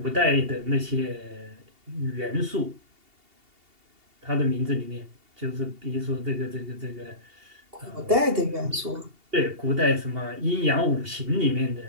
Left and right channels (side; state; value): left; late; 2.8 ms